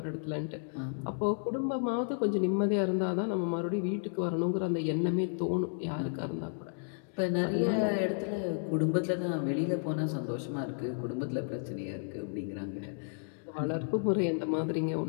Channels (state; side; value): silent; right; digital silence